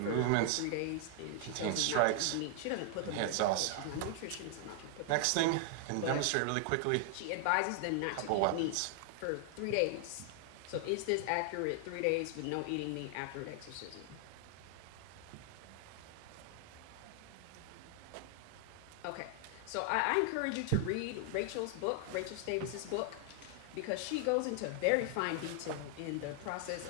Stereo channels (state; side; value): different; both; correlation 0.00